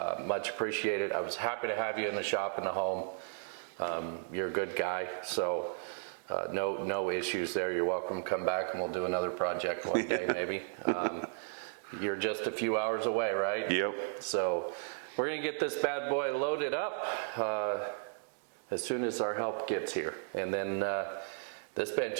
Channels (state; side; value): silent; left; digital silence